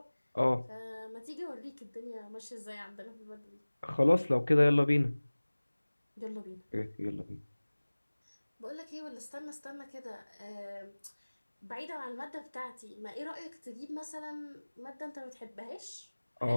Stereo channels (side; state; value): both; inverted; correlation -1.00